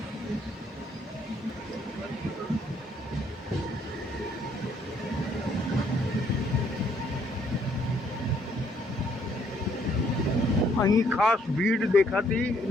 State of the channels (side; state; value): both; normal; correlation 0.67